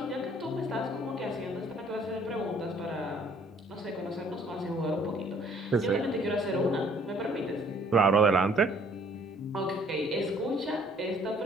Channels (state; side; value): normal; both; correlation 0.60